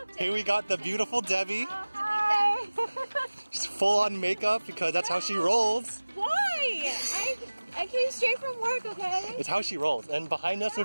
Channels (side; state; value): both; inverted; correlation -1.00